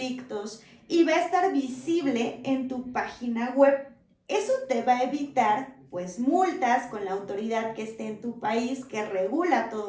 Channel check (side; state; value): both; identical; correlation 1.00